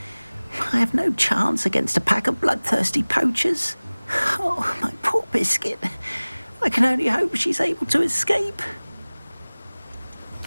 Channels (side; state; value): both; inverted; correlation -1.00